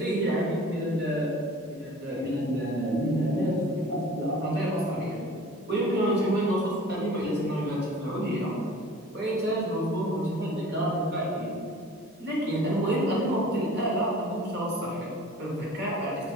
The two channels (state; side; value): normal; both; correlation 0.45